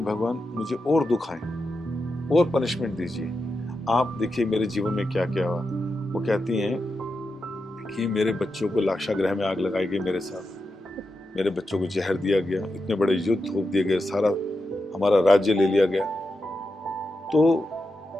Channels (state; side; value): normal; both; correlation 0.88